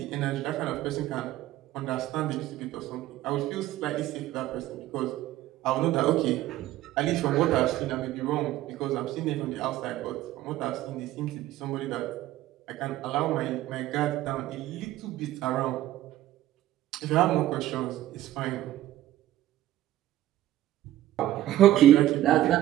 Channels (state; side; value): quieter; left; 14.3 dB